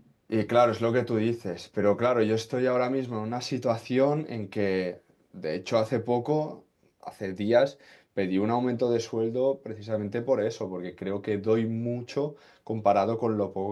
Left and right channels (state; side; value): identical; both; correlation 1.00